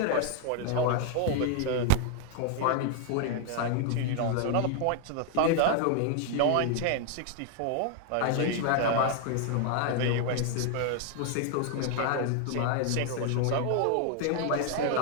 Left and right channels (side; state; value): both; different; correlation 0.00